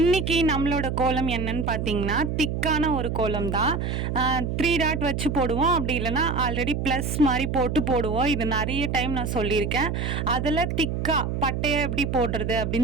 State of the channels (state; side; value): noise; right; hum, 2 dB below the sound